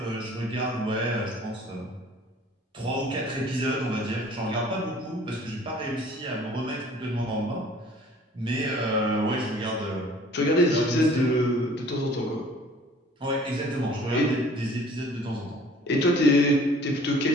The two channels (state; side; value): normal; both; correlation 0.51